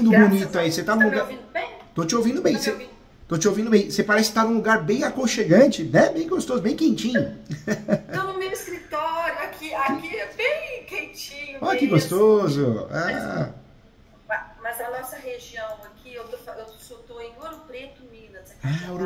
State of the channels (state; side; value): identical; both; correlation 1.00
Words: Graças bonito a aí, Deus. você Você tá num está me lugar... ouvindo bem? Tô te ouvindo bem, Tá me ouvindo? tô te ouvindo bem. Você parece estar num lugar bem aconchegante, né? Bem gostoso, bem quentinho. Estou no meu escritório, aqui é bem quentinho Olha que mesmo. gostoso. Mas, Ah, mas a nossa região aqui, eu tô em Ouro Preto, Minas, aqui do Ouro